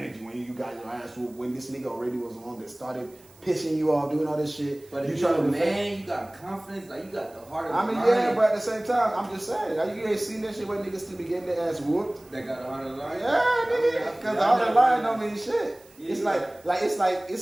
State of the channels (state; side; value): noise; right; hiss, 27 dB below the sound